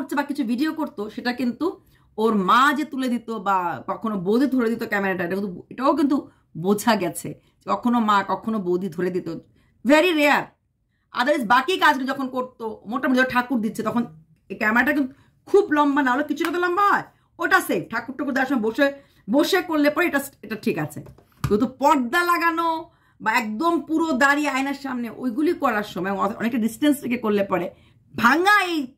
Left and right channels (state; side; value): identical; both; correlation 1.00